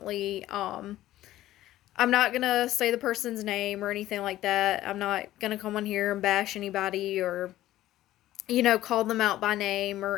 I'm not gonna say the person's name or anything like that. I'm not gonna come on here and bash anybody or call them out by name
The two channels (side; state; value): right; quieter; 14.6 dB